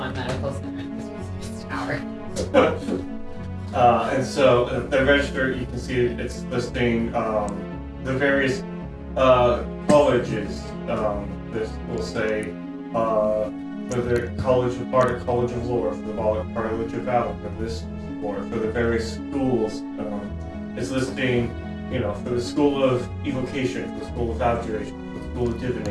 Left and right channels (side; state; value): both; identical; correlation 1.00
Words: medical center. This is tower. And so the register, you can see it's listing the various colleges. This will say for the College of Art, College of Lore, for the College of Valor, for this floor, for the various schools. It's listing, for the School of Evocation, for the School of Abjuration, for the School of